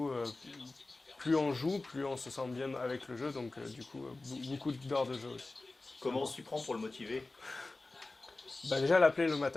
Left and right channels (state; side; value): quieter; right; 3.2 dB